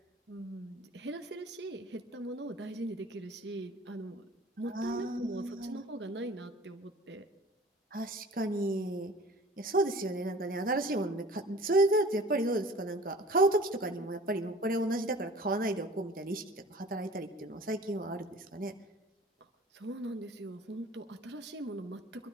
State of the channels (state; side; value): normal; both; correlation 0.45